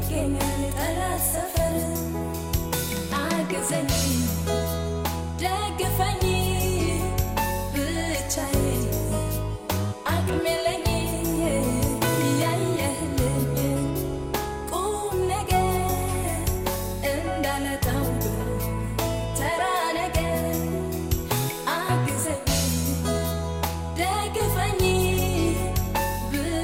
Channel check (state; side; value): identical; both; correlation 1.00